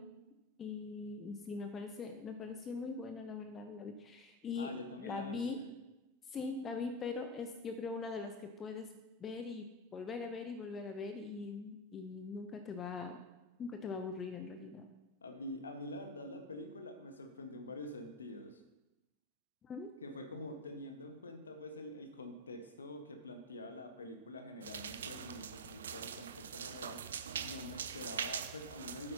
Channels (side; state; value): both; normal; correlation 0.10